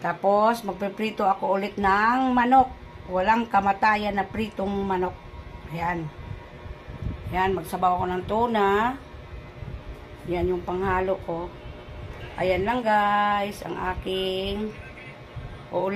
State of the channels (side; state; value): both; identical; correlation 1.00